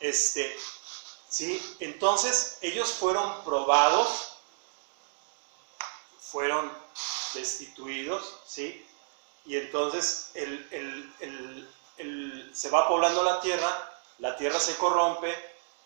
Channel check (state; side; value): silent; left; digital silence